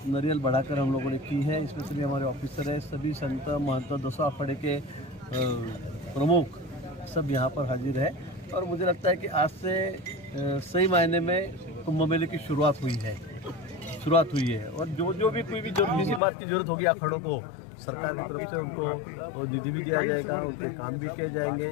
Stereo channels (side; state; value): right; drops out; at 16.2 s